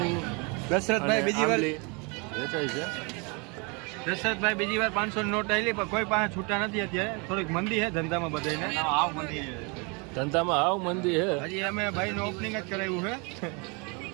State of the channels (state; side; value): quieter; left; 31.4 dB